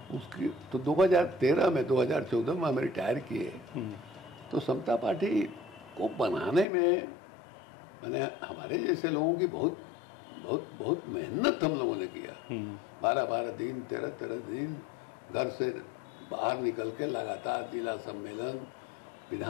उसकी तो 2013 में 2014 में हम रिटायर किए। तो समता पार्टी को बनाने में मैंने हमारे जैसे लोगों की बहुत बहुत बहुत मेहनत हम लोगों ने किया। 12-12 दिन 13-13 दिन घर से बाहर निकल के लगातार जिला सम्मेलन,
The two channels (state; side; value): drops out; right; at 6.7 s